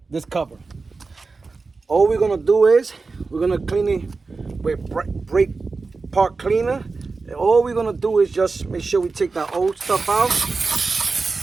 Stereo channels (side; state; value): left; quieter; 4.1 dB